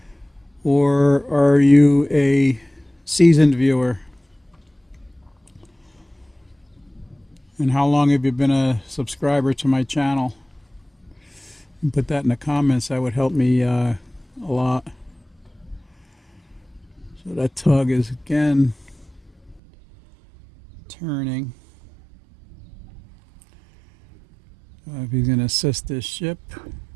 or are you a seasoned viewer? And how long have you been a subscriber to my channel? You can put that in the comments. That would help me a lot. So that tug is again turning. If he's going to assist this ship.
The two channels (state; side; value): drops out; left; at 19.6 s